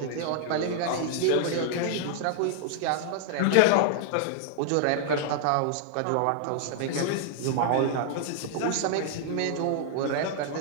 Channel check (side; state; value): both; different; correlation -0.01